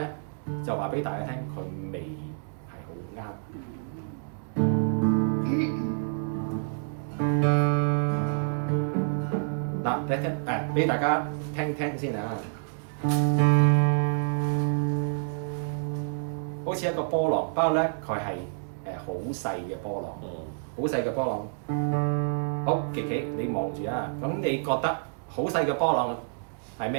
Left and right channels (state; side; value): silent; left; digital silence